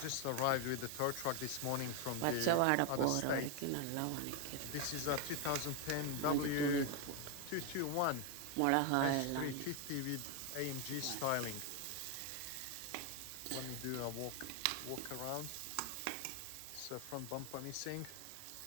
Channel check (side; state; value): both; different; correlation 0.01